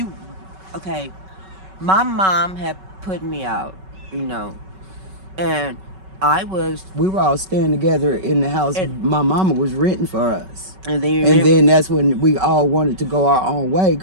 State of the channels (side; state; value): left; late; 5.3 ms